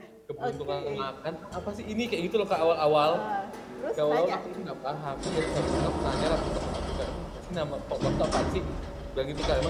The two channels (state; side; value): identical; both; correlation 1.00